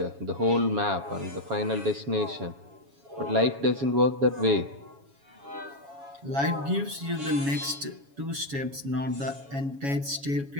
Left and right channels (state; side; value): late; left; 7.2 ms